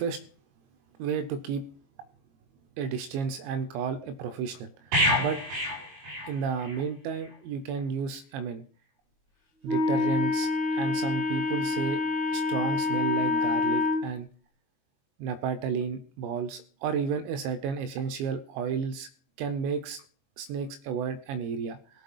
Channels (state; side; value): late; left; 22 ms